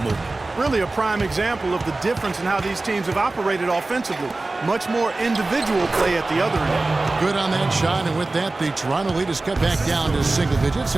Really a prime example of the difference in how these teams have operated offensively. Much more individual play at the other end. Good on that shot, and with that, the Toronto lead is cut back down to single digits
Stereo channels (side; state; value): left; quieter; 3.2 dB